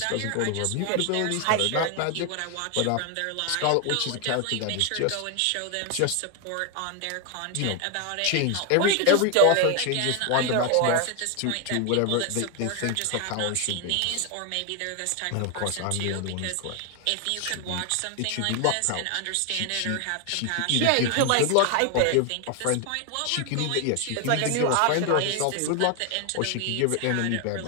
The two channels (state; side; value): different; both; correlation 0.01